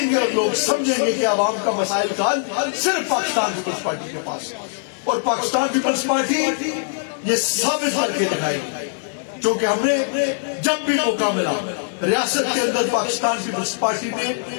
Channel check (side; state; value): right; silent; 65 dB below the other